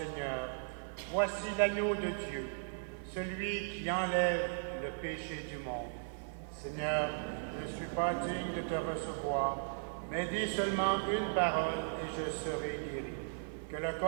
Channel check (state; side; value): silent; left; digital silence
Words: voici l'agneau de Dieu, celui qui enlève le péché du monde. Seigneur, je ne suis pas digne de te recevoir, mais dis seulement une parole et je serai guéri. Que le